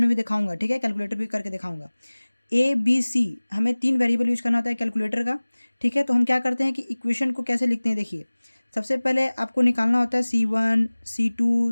भी दिखाऊंगा, ठीक है, कैलकुलेटर भी करके दिखाऊंगा। ए बी सी हमें 3 वेरिएबल यूज करना होता है कैलकुलेटर का, ठीक है। तो हम क्या करते हैं कि इक्वेशन को कैसे लिखते हैं, देखिए सबसे पहले आपको निकालना होता है C1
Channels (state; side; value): inverted; both; correlation -1.00